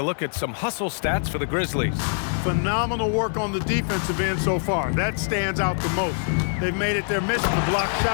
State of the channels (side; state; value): right; silent; digital silence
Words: look at some hustle stats for the Grizzlies. Phenomenal work on the defensive end so far. That stands out the most. They've made it their mission to block